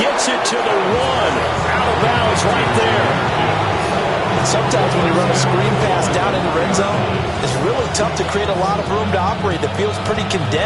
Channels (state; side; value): identical; both; correlation 1.00